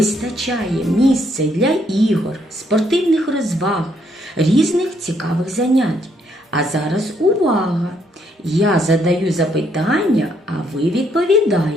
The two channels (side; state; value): both; normal; correlation 0.71